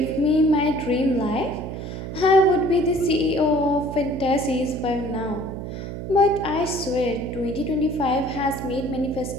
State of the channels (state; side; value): noise; right; hum, 7 dB below the sound